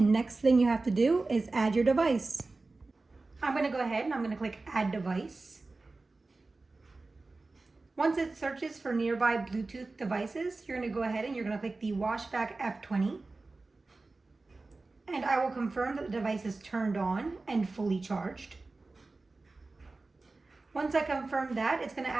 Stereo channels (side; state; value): left; quieter; 3.5 dB